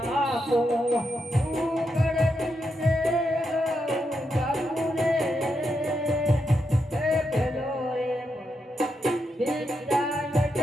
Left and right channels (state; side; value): normal; both; correlation 0.83